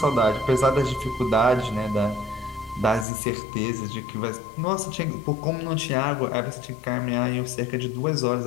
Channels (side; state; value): right; drops out; at 3.1 s